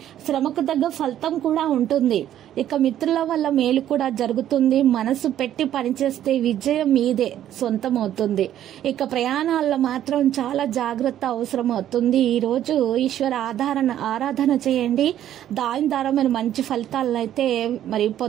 శ్రమకు తగ్గ ఫలితం కూడా ఉంటుంది. ఇక మిత్రుల వల్ల మేలు కూడా జరుగుతుంది. మనసు పెట్టి పనిచేస్తే విజయం మీదే సొంతం అవుతుంది. ఇక ప్రయాణాల్లో మాత్రం చాలా జాగ్రత్త అవసరం అవుతుంది. ఈ రోజు ఈశ్వర ఆరాధన చేయండి. దాని ద్వారా మీరు మంచి ఫలితాలను అయితే మరి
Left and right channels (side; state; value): left; quieter; 11.4 dB